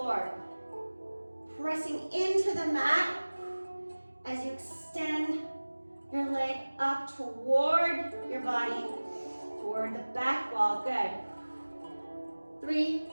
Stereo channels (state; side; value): inverted; both; correlation -1.00